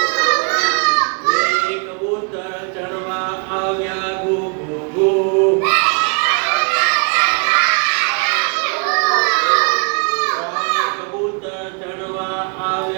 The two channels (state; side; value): quieter; left; 38.2 dB